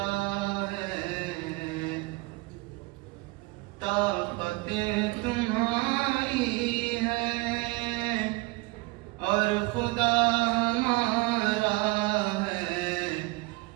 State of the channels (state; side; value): quieter; left; 24.0 dB